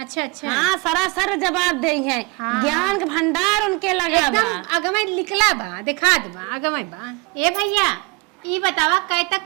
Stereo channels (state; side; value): quieter; left; 28.0 dB